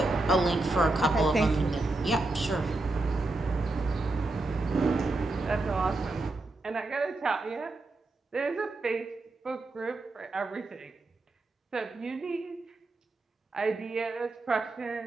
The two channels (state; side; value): quieter; left; 3.0 dB